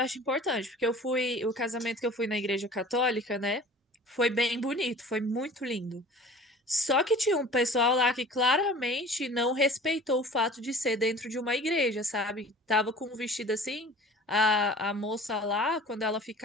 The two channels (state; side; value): normal; both; correlation 0.44